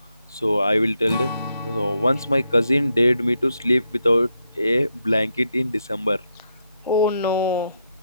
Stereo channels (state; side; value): inverted; both; correlation -0.81